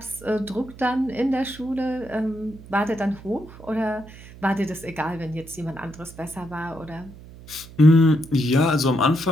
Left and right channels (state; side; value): noise; right; hum, 18 dB below the sound